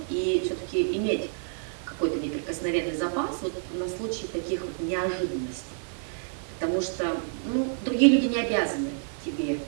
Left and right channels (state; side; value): silent; left; digital silence